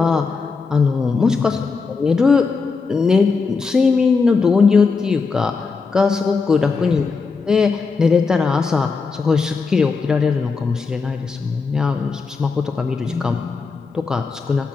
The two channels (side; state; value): right; quieter; 4.7 dB